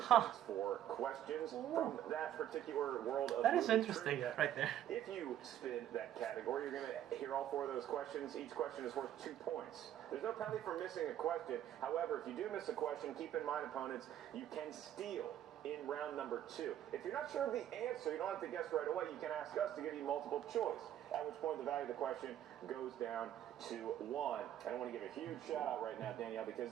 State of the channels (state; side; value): quieter; left; 11.3 dB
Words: 4 questions from that particular world of That is movie interesting, trivia. right there. If you spin that category, you're going to hear all 4 of those questions. Each question is worth 2 points. There's no penalty for missing a question. However, if you do miss a question, keep in mind, opponents, you can steal in round number 2. If you're not sure of the answer, you don't have to guess right away. You can ask us to give you multiple choice, at which point the value of the question goes down to 1. And I want to give a huge shout out right now, Danielle, because